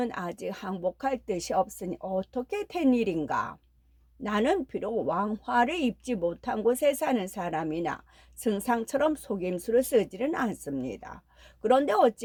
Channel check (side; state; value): both; identical; correlation 1.00